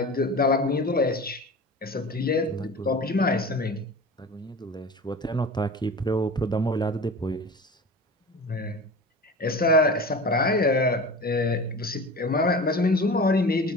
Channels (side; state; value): both; normal; correlation 0.34